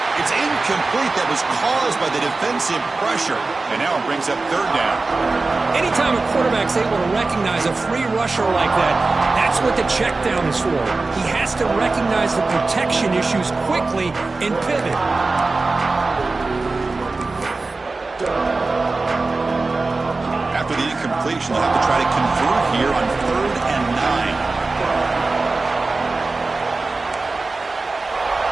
incomplete. That was caused by the defensive pressure. And now it brings up third down. Anytime a quarterback's able to recognize a free rusher like that, that's what the check down is for. He has to recognize the protection issues quickly and pivot. After the incompletion, they'll have to try to convert here on 3rd and 9.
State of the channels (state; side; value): quieter; left; 3.6 dB